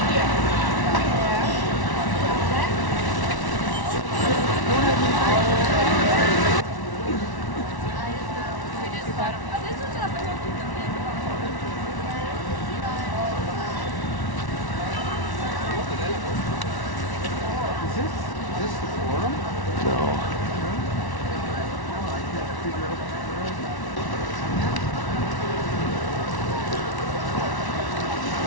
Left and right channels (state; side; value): late; right; 1.1 ms